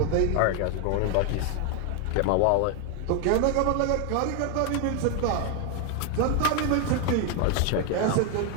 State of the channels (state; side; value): different; both; correlation 0.01